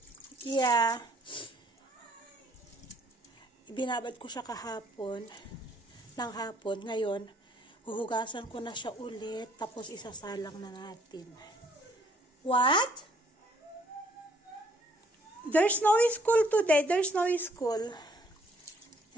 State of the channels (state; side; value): normal; both; correlation 0.63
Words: Ibinabad ko siya kahapon. Ng hapon. Ngayon, huhugasan ko na siya ulit. Tapos isasalang na natin. What? There's no school today. There's no school.